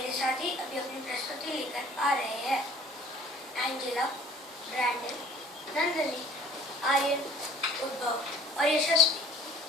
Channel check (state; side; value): normal; both; correlation 0.51